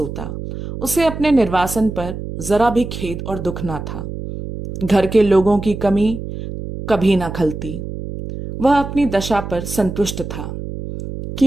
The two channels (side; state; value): right; noise; hum, 8 dB below the sound